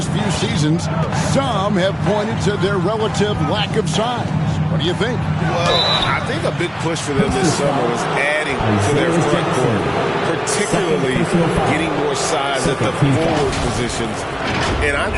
few seasons, some have pointed to their relative lack of size. What do you think? Well, I think a big push for them this summer was adding to their front court, particularly getting more size at the forward positions. And I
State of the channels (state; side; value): identical; both; correlation 1.00